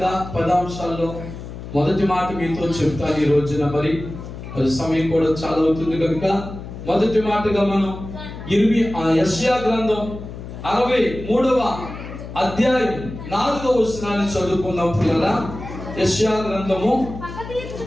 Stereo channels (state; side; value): noise; left; hum, 11 dB below the sound